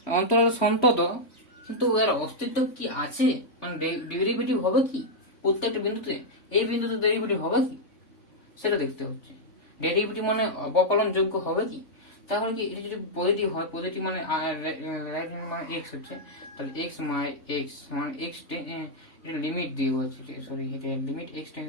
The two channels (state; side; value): late; right; 3.5 ms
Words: অন্তরাল সন্তত, কিন্তু এর অস্তিত্ব কি আছে, মানে ডেরিভেটিভ হবে কি প্রত্যেকটা বিন্দুতে, এই বিন্দুতে ডেরিভেটিভ হবে কি সেটা দেখতে হচ্ছে। ডেরিভেটিভ মানে অবকলন যোগ্য হবে কি, তাহলে কি এটা যদি পজিটিভ হয়, পজিটিভ মানে রাইট হ্যান্ড মানে এক্স হচ্ছে, তাহলে এক্স মানে এক্স এটা লিমিট দিয়ে বলছে, সরি এটা limit x